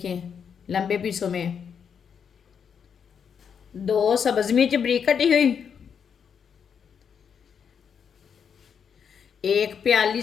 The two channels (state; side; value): quieter; right; 7.2 dB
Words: लंबे पीसों में। दो सब्ज मिर्च बारीक कटी हुई। एक प्याली